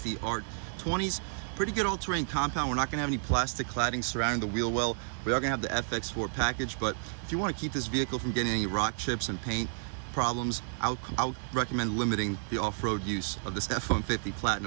Art 20s. Pretty good all-terrain compound. We're not gonna have any plastic cladding surrounding the wheel well. We are gonna have the FX4 package, but if you wanna keep this vehicle from getting any rock chips and paint problems, I would recommend limiting the off-road use of this F-150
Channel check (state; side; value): silent; left; digital silence